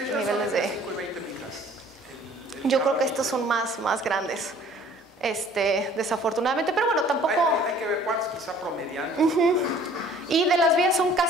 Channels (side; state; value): both; normal; correlation 0.53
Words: de... 5 y 20 micras. Yo creo que estos son más grandes, desafortunadamente, pero bueno, tampoco... Hay que ver cuántos, quizá promediando. Y de las vías son